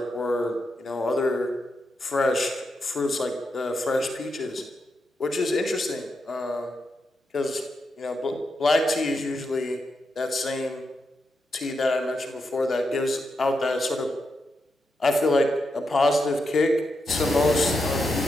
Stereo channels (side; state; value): both; normal; correlation 0.85